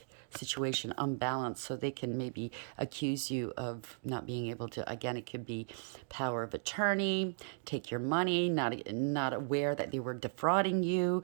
situation, unbalanced, so they can maybe accuse you of not being able to, again, it could be power of attorney, take your money, not aware that they were defrauding you,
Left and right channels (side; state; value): left; silent; digital silence